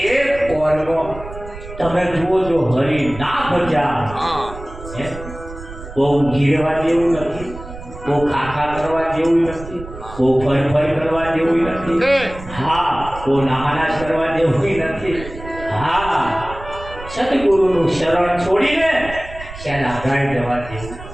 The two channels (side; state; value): right; noise; rumble, 13 dB below the sound